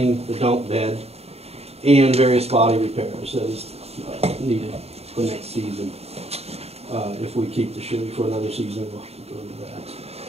the dump bed, and various body repairs that is needed for next season. If we keep the Chevy for another season, we'll have to go into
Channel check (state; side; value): late; left; 0.30 ms